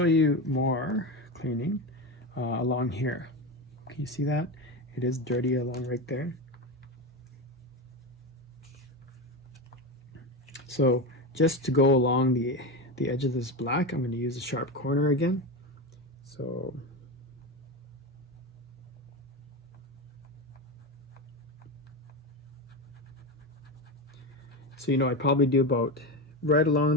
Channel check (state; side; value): normal; both; correlation 0.19